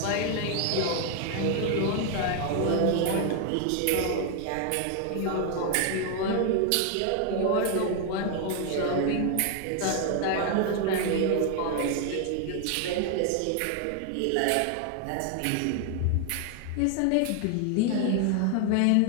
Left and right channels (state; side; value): different; both; correlation 0.00